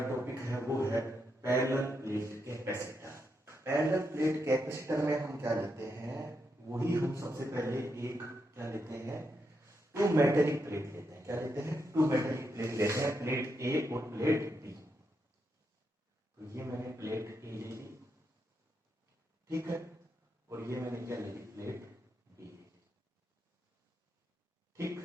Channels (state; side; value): normal; both; correlation 0.82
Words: टॉपिक है वो है parallel plate capacitor. Parallel plate capacitor में हम क्या लेते हैं, वही हम सबसे पहले एक क्या लेते हैं, टू मेटेलिक प्लेट लेते हैं। क्या लेते हैं? टू मेटेलिक प्लेट लेते हैं, प्लेट ए और प्लेट बी। तो ये मैंने प्लेट ए ले ली, ठीक है, और ये मैंने क्या ले ली, प्लेट बी,